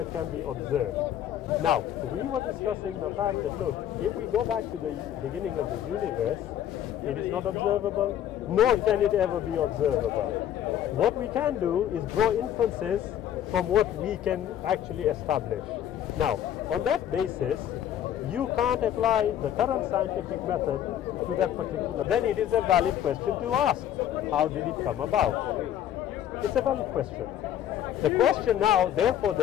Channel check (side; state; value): right; quieter; 10.7 dB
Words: can be observed. Now, we were discussing the fact that, look, if we go back to the beginning of the universe, it is not observable, nor can it ever be observable. What we can do is draw inferences from what we can actually establish. Now, on that basis, you can't apply the current scientific method to that particular. Then it is a valid question to ask. How did it come about? It's a valid question. The question now, therefore,